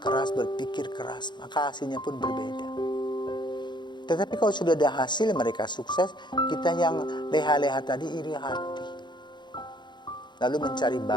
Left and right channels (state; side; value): late; right; 0.22 ms